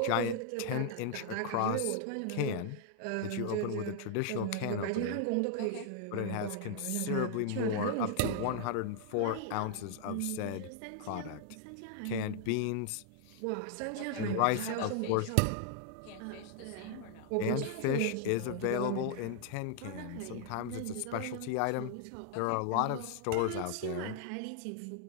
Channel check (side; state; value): both; different; correlation 0.00